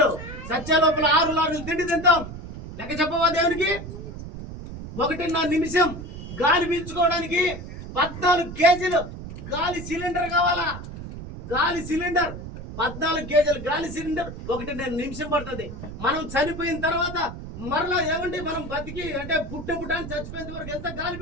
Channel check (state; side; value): noise; right; rumble, 10 dB below the sound